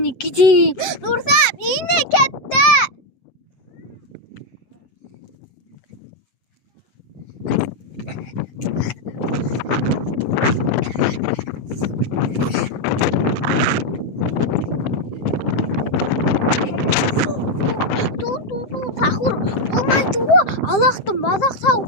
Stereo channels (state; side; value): late; right; 7.7 ms